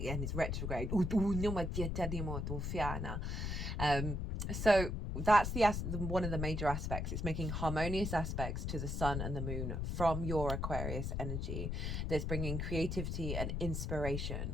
it's retrograde. So that's one of the major aspects. It's making harmonious aspects to the sun and the moon from your Aquarius energy. That's bringing creativity and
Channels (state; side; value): noise; left; rumble, 2 dB below the sound